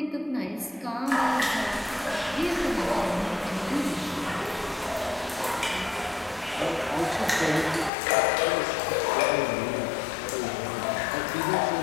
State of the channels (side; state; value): right; drops out; at 7.9 s